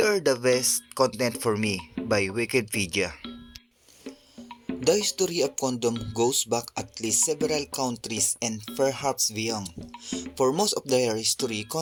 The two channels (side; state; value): both; identical; correlation 1.00